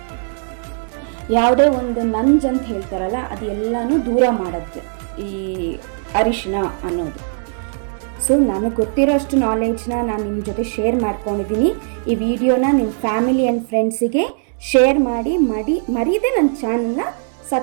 ಯಾವುದೇ ಒಂದು ನಂಜ್ ಅಂತ ಹೇಳ್ತಾರಲ್ಲ, ಅದು ಎಲ್ಲನೂ ದೂರ ಮಾಡುತ್ತೆ ಈ ಅರಿಶಿನ ಅನ್ನೋದು. ಸೊ ನನಗೆ ಗೊತ್ತಿರೋಷ್ಟು ನಾಲೆಡ್ಜ್ನ ನಾನು ನಿಮ್ಮ ಜೊತೆ ಶೇರ್ ಮಾಡ್ಕೊಂಡಿದ್ದೀನಿ. ಈ ವಿಡಿಯೋನ ನಿಮ್ಮ ಫ್ಯಾಮಿಲಿ ಆ್ಯಂಡ್ ಫ್ರೆಂಡ್ಸಿಗೆ ಶೇರ್ ಮಾಡಿ ಮರೀದೆ ನನ್ನ ಚಾನಲ್ನ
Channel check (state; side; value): silent; left; digital silence